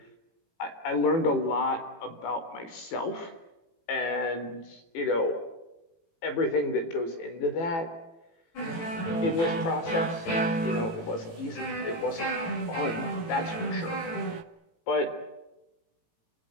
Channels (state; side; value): late; right; 18 ms